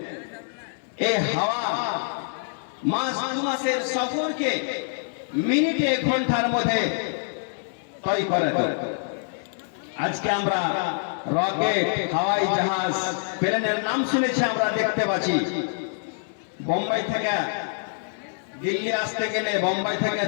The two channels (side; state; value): right; silent; 61 dB below the other